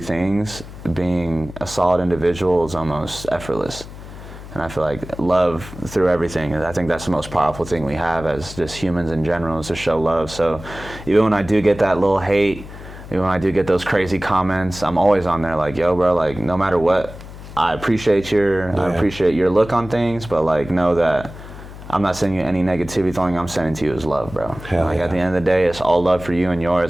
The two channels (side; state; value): left; noise; hum, 14 dB below the sound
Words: things, being a solid individual is almost effortless. And I feel like love through everything, I think that's the most powerful thing we have as just humans in general, is to show love. So even when I do get that little hate, even when I do get those crazy comments, I'm always on there like, yo, bro, like no matter what, I appreciate your look on things, but like know that I'm not sending you any negativity. The only thing I'm sending to you is love, bro. Like at the end of the day, it's all love for you and